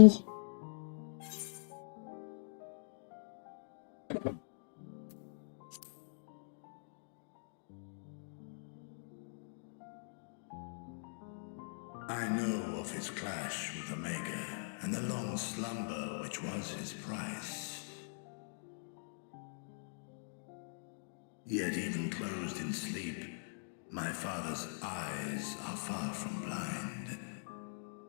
I know of his clash with Omega, and the long slumber which was his price. Yet even closed in sleep, my father's eyes are far from blind.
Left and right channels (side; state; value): right; silent; digital silence